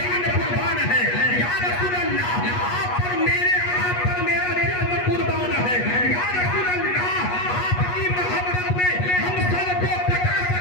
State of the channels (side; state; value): right; late; 8.3 ms